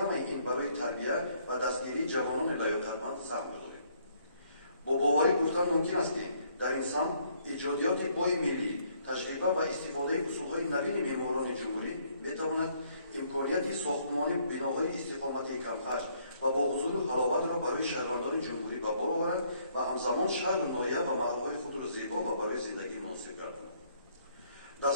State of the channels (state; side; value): inverted; both; correlation -0.67